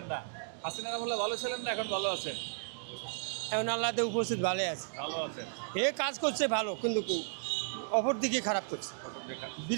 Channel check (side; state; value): left; silent; digital silence